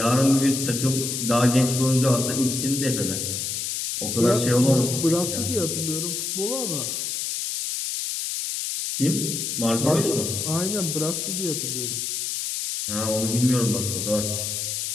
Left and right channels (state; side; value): noise; left; hiss, 2 dB below the sound